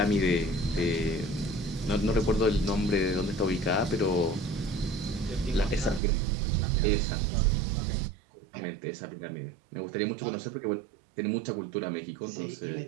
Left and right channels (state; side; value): drops out; left; at 6.0 s